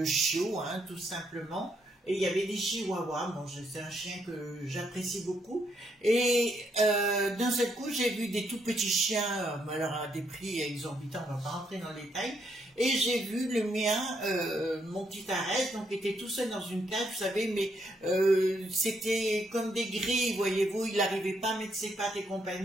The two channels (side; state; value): both; normal; correlation 0.75